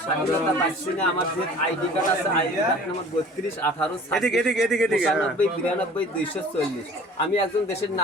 স্বাধীনতা পাচ্ছি না। আমার যে আইডি কার্ড আছে, আইডি কার্ড নাম্বার 32 18 95 92 240। আমি একজন দেশের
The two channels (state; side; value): normal; both; correlation 0.46